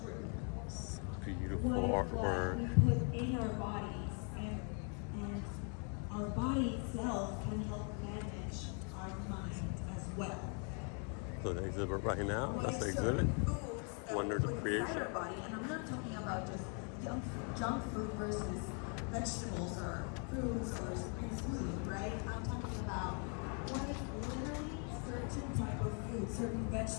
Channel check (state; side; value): quieter; right; 39.7 dB